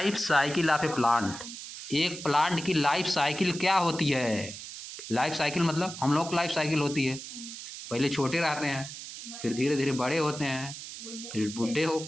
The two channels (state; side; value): noise; right; hiss, 11 dB below the sound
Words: cycle of a plant. एक प्लांट की लाइफ साइकिल क्या होती है? लाइफ साइकिल मतलब हम लोग लाइफ साइकिल होती है, पहले छोटे रहते हैं, फिर धीरे धीरे बड़े होते हैं, फिर बूढ़े हो